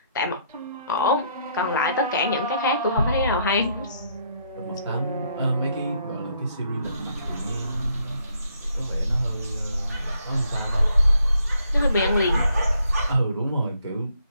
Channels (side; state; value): both; inverted; correlation -0.70